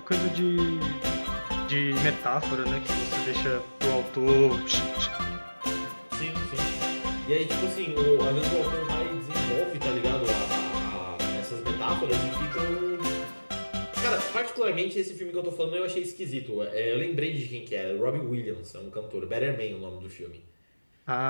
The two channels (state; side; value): inverted; both; correlation -1.00